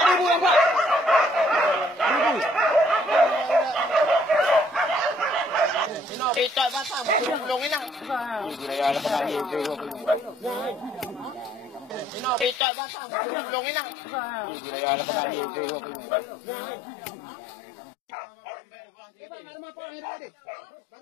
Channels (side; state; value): right; drops out; at 12.6 s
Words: Ito bata mo kulungin na. Ito bata mo kulungin na. Iba marma pa ang herde.